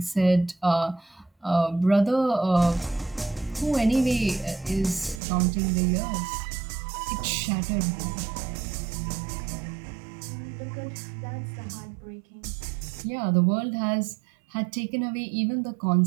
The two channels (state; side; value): drops out; left; at 5.2 s